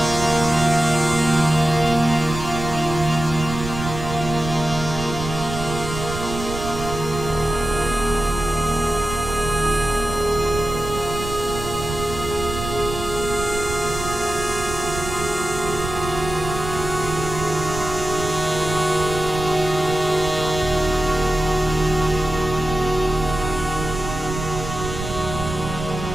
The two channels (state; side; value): noise; right; rumble, 7 dB below the sound